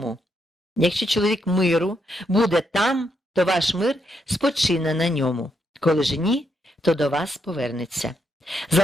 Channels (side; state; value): both; normal; correlation 0.79